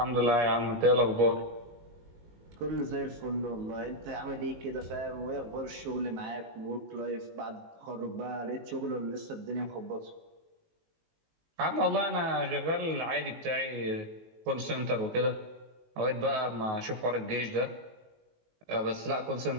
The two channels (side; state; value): left; late; 19 ms